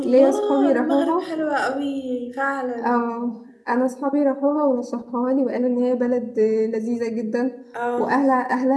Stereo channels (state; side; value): identical; both; correlation 1.00